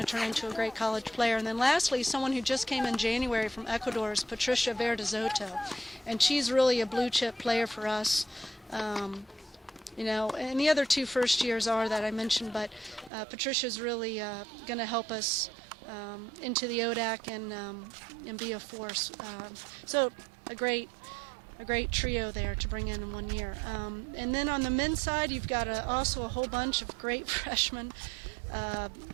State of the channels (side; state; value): left; drops out; at 13.1 s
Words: turn into a great college player. And then lastly, someone who just came in January from Ecuador is Patricia Verdezoto, and she's really a blue chip player for us. And the other 2 first years are that I mentioned, but Patricia's really going to help us into the ODAC and be a force. So a great trio there to bring in 1 year. And then on the men's side, you've got also a whole bunch of great freshmen.